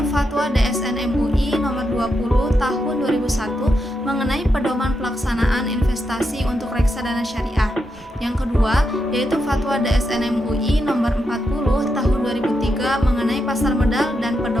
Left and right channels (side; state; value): both; normal; correlation 0.84